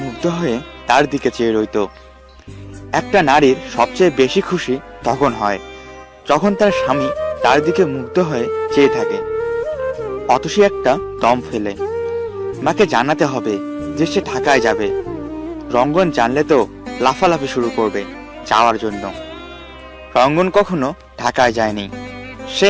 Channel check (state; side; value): identical; both; correlation 1.00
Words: মুগ্ধ হয়ে তার দিকে চেয়ে রইত। একটা নারীর সবচেয়ে বেশি খুশি তখন হয় যখন তার স্বামী তার দিকে মুগ্ধ হয়ে চেয়ে থাকে। অতসী একটা দম ফেলে মাকে জানাতে হবে যে সে ঢাকায় যাবে। রঙ্গন জানলে তো লাফালাফি শুরু করবে যাওয়ার জন্য। রঙ্গন কখনো ঢাকায় যায়নি। সে